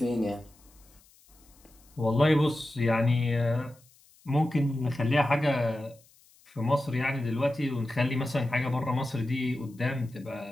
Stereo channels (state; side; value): noise; left; hiss, 29 dB below the sound